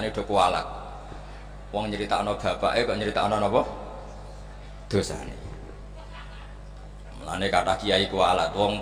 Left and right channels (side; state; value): both; identical; correlation 1.00